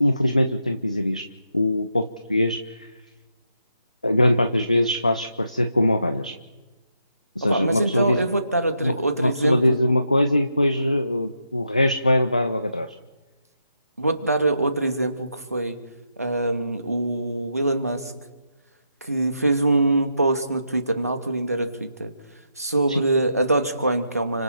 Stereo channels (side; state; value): both; inverted; correlation -0.82